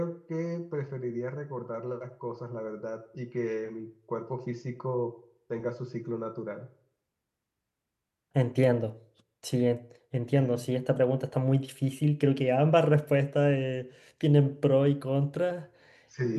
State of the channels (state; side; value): identical; both; correlation 1.00